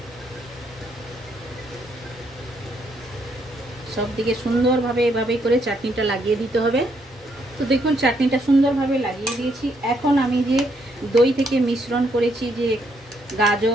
সব দিকে সুন্দরভাবে এভাবেই করে চাটনিটা লাগিয়ে দিতে হবে। তো দেখুন চাটনিটা সুন্দরভাবে লাগিয়ে দিয়েছি। এখন আমি যে দই থেকে মিশ্রণ করেছি যে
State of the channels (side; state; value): both; normal; correlation 0.73